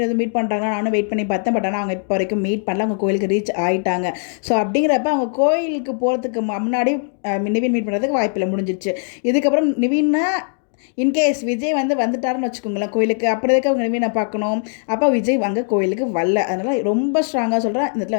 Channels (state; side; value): silent; right; 60 dB below the other